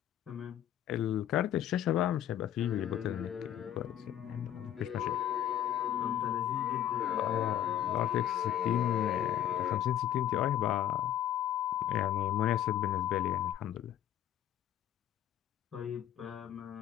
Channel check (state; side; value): quieter; right; 11.1 dB